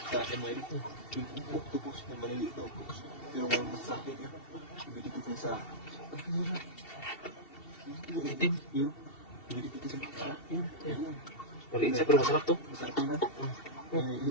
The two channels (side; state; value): right; late; 2.7 ms